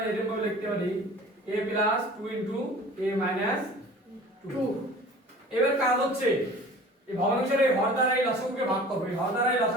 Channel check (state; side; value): normal; both; correlation 0.44